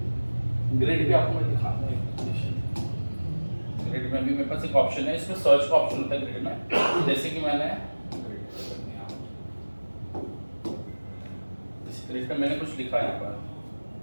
ग्रिड भी आपको मैं दिखाऊंगा। ग्रिड में भी मेरे पास एक ऑप्शन है, इसमें सर्च का ऑप्शन होता है ग्रिड में। जैसे कि मैंने इस ग्रिड में मैंने कुछ लिखा यहाँ पर,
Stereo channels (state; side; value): inverted; both; correlation -1.00